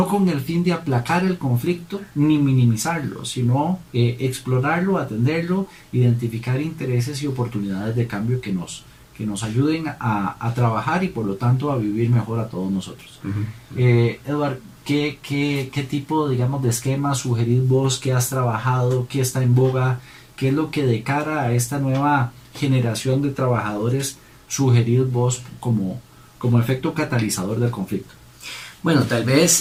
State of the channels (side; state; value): both; identical; correlation 1.00